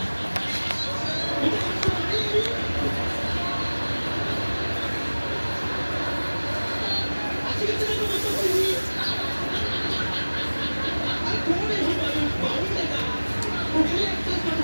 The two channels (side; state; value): both; inverted; correlation -1.00